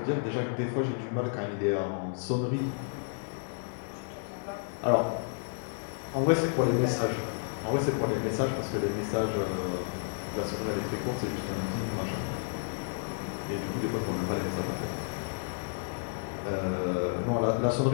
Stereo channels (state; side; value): silent; right; digital silence